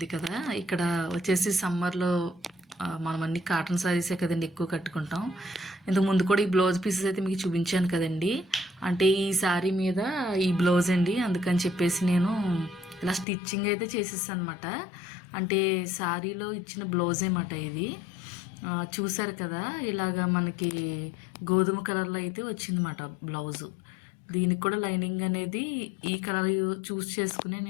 కదా. ఇక్కడ వచ్చేసి సమ్మర్లో మనం అన్ని కాటన్ శారీసే కదండి ఎక్కువ కట్టుకుంటాం. ఇంతకు ముందు కూడా ఈ బ్లౌజ్ పీసెస్ అయితే మీకు చూపించాను కదండి. అంటే ఈ శారీ మీద ఈ బ్లౌజ్ అండి, అందుకని చెప్పేసి నేను ఇలా స్టిచ్చింగ్ అయితే చేసేసాను అనమాట. అంటే శారీలో ఇచ్చిన బ్లౌజే మాట ఇది. చూసారు కదా, ఇలాగా మనకి గోధుమ కలర్లో అయితే వచ్చిందన్నమాట బ్లౌజు. దీనికి కూడా లైనింగ్ అనేది ఈ కలర్ చూస్ చేసుకుని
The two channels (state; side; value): drops out; right; at 13.2 s